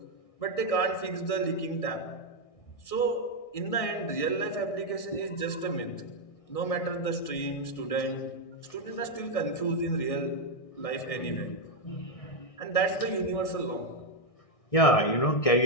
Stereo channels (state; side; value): late; right; 1.6 ms